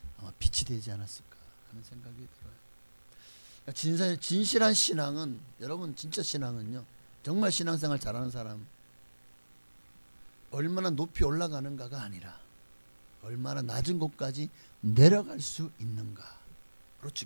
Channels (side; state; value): both; inverted; correlation -1.00